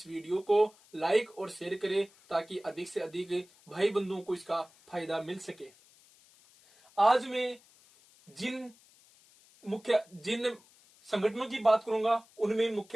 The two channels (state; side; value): noise; left; hiss, 28 dB below the sound